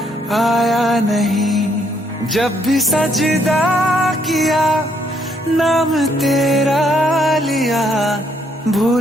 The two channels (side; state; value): both; normal; correlation 0.70